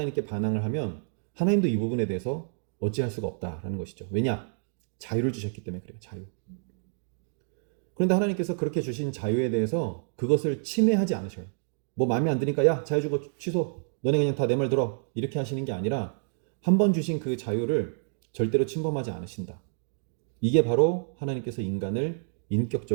반항을 하면 하나님도 이 부분에 대해서 어찌할 수가 없다라는 것이죠. 왜냐? 자유를 주셨기 때문에 그래요. 자유. 그런데 하나님께서 그렇게 주신 자유에 대해서 그것을 침해하지 않으셔요. 뭐 마음에 안 드니까 야 자유 주고 취소. 너네 그냥 다 내 말 들어. 이렇게 하시는 게 아니라 한 번 주신 그 자유를 절대로 침범하지 않으신다. 이게 바로 하나님께서 인간을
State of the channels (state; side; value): silent; left; digital silence